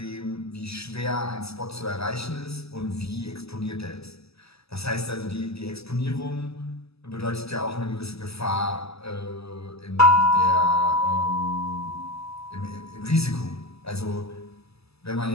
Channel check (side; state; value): right; late; 0.78 ms